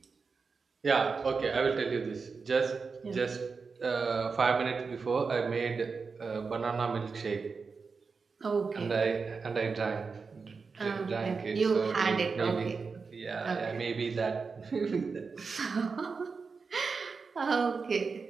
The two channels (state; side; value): quieter; left; 4.9 dB